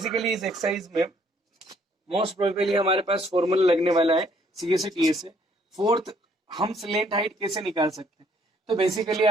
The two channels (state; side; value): normal; both; correlation 0.65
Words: इस एक्सरसाइज में मोस्ट प्रोबेबली हमारे पास फॉर्मूला लगने वाला है सी ए से टी ए से। फोर्थ, हम स्लेंट हाइट कैसे निकाल सकते हैं, तो बेसिकली